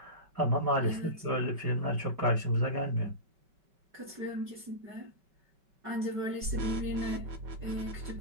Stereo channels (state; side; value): late; left; 5.3 ms